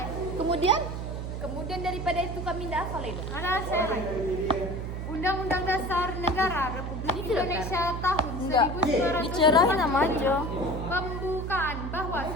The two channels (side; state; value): right; noise; hum, 5 dB below the sound